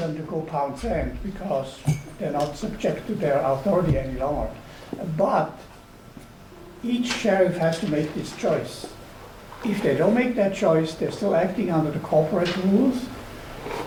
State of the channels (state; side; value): identical; both; correlation 1.00